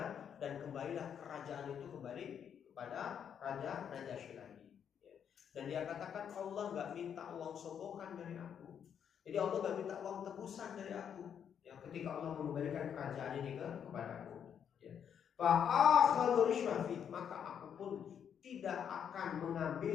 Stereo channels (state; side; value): quieter; right; 8.2 dB